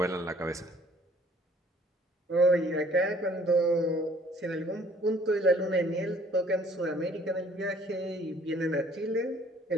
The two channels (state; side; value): normal; both; correlation 0.57